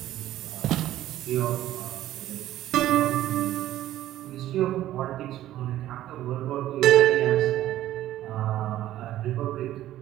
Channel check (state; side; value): quieter; left; 13.7 dB